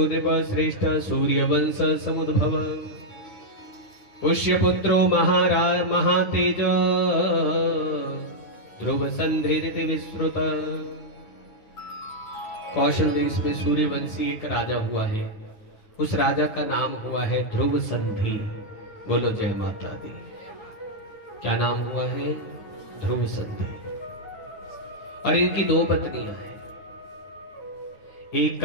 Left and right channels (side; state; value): right; late; 9.2 ms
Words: नृपश्रेष्ठ सूर्यवंश समुद्भव पुष्यपुत्रो महातेज ध्रुव संधिरिति विश्रुत। कौशल देश में सूर्यवंशी एक राजा हुआ है, उस राजा का नाम हुआ है ध्रुव संधि। बोलो जय माता दी। क्या नाम हुआ है? ध्रुव संधि। और इनकी दो पत्नियां हैं, एक